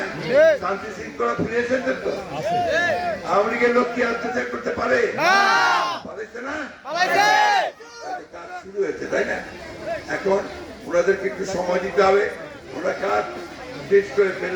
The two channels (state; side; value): identical; both; correlation 1.00